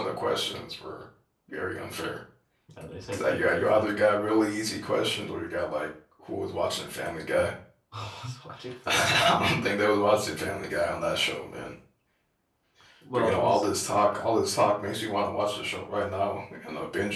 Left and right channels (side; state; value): both; identical; correlation 1.00